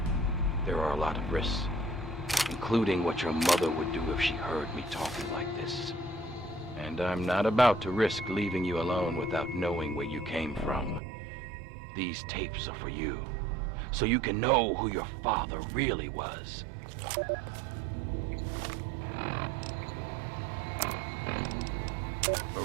There are a lot of risks, including what your mother would do if she heard me talking like this. And I'm not about to risk leaving you alone without knowing where you came from. These tapes are for you, so you can know who your father really was.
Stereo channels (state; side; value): drops out; left; at 11.0 s